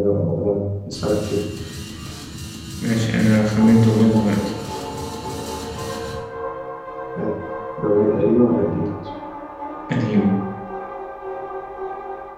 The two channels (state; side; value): identical; both; correlation 1.00